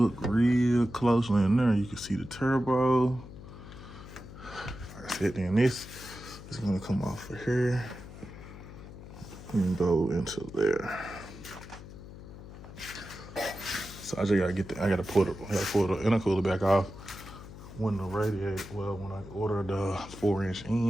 real closely in there, you can see the turbo. Like I said, then this is gonna come off of here and go into there. So I just gotta get I gotta pull the intercooler back off when the radiator, well, when I ordered the 4-inch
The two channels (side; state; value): left; noise; hum, 14 dB below the sound